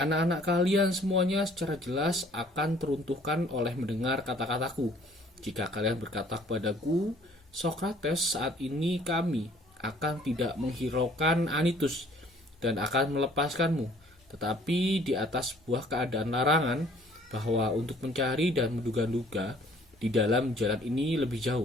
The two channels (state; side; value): normal; both; correlation 0.57